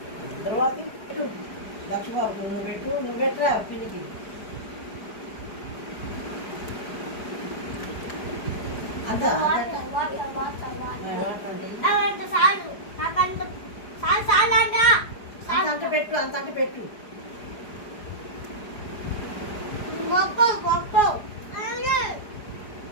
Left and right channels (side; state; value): right; late; 4.9 ms